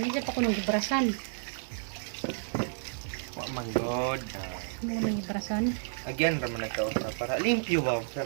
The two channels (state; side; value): silent; left; 57 dB below the other